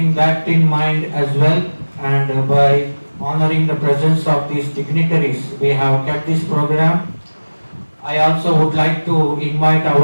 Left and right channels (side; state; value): both; inverted; correlation -1.00